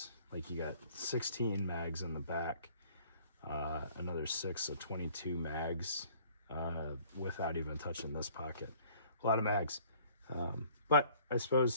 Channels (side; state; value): both; inverted; correlation -0.56